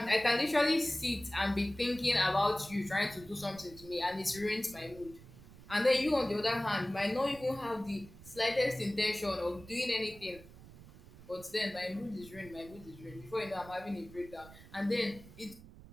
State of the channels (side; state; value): right; noise; rumble, 19 dB below the sound